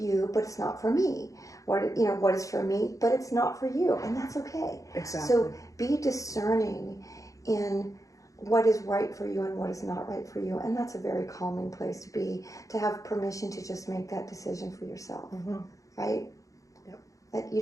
but it's not for me. What is for me, but it's not for you. And that's okay. Exactly. So be discerning in what is right for you and what is not right for you. And that's a very calming place to be, to have permission to just make that decision for yourself. Right? Yep. That you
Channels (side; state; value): right; late; 0.16 ms